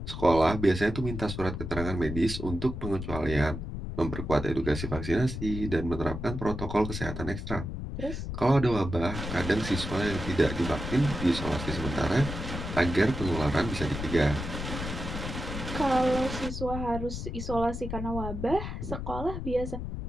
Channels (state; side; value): noise; left; rumble, 6 dB below the sound